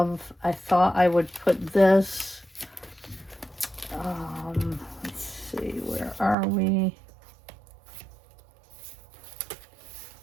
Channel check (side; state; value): left; drops out; at 6.4 s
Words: I thought I would put this, let's see, where are we?